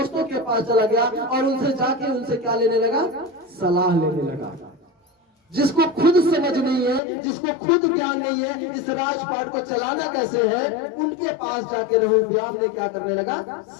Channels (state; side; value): drops out; right; at 7.0 s